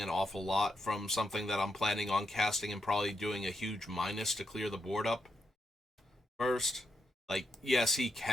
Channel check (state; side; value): normal; both; correlation 0.83